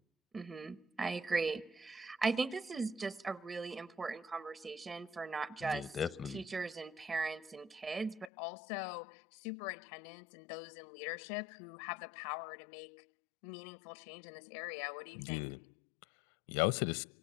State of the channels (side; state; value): right; drops out; at 8.3 s